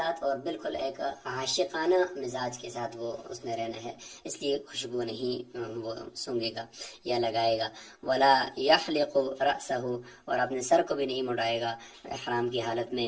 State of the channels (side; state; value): both; identical; correlation 1.00